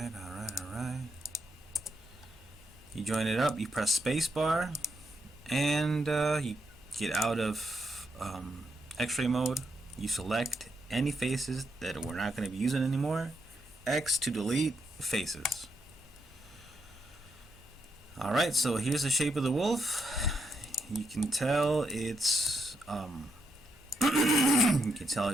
Alright. You join it up, you press spacebar, and you get out of X-ray mode. You select any faces that we're not going to be using anymore. X to delete faces. Alright, so here's the shape of the wolf. You can tell it's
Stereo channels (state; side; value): normal; both; correlation 0.80